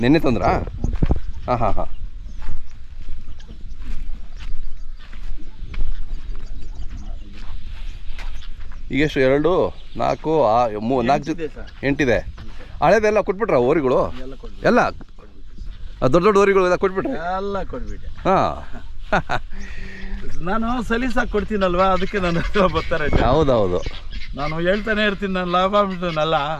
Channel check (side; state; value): both; identical; correlation 1.00